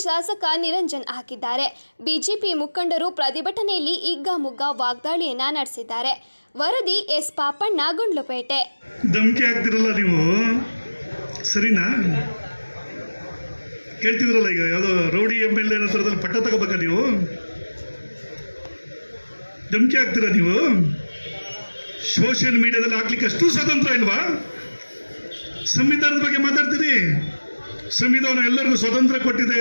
ಶಾಸಕ ನಿರಂಜನ್ ಹಾಕಿದ್ದಾರೆ. ಬಿಜೆಪಿ ಮುಖಂಡರು ಪ್ರತಿಭಟನೆಯಲ್ಲಿ ಹಿಗ್ಗಾಮುಗ್ಗಾ ವಾಗ್ದಾಳಿಯನ್ನ ನಡೆಸಿದ್ದಾರೆ. ವರದಿ ಎಸ್ ಪಾಪಣ್ಣ, ಗುಂಡ್ಲುಪೇಟೆ. ಧಮಕಿ ಹಾಕ್ತಿರಲ್ಲ ನೀವು, ಸರಿನಾ? ಹೇಳ್ತಿದ್ರಲ್ಲ, ಈಗ ಯಾವುದೋ ರೌಡಿ MLA ಹತ್ರದಲ್ಲಿ ಪಟ್ಟ ತಗೋಬೇಕಾ ನೀವು? ಧಮಕಿ ಹಾಕ್ತೀರಾ ನೀವು? ಸೋಷಿಯಲ್ ಮೀಡಿಯಾದಲ್ಲಿ ಹಾಕ್ಲಿಕ್ಕೆ ಅಷ್ಟು ಸ್ವತಂತ್ರ ಇಲ್ವಾ? ಸಂವಿಧಾನದ ಬಗ್ಗೆ ಮಾತಾಡ್ತೀರಿ. ಸಂವಿಧಾನ ಎಲ್ಲರಿಗೂ ಸ್ವತಂತ್ರ ಕೊಟ್ಟಿದೆ,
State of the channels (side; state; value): both; inverted; correlation -1.00